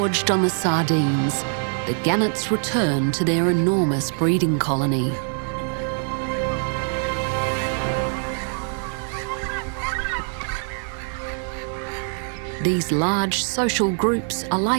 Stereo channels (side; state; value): left; silent; 57 dB below the other